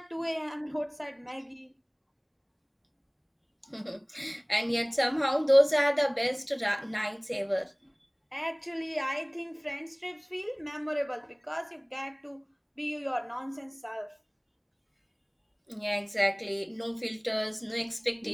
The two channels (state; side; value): identical; both; correlation 1.00